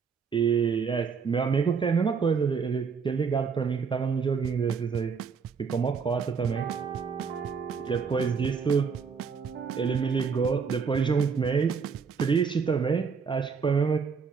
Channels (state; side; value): quieter; left; 5.8 dB